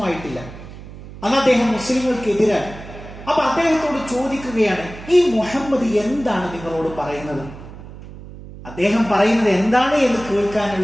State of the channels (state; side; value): noise; right; hum, 15 dB below the sound